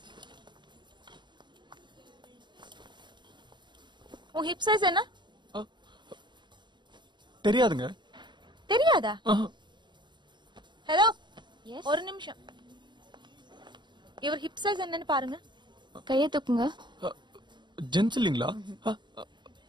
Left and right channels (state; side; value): late; left; 0.22 ms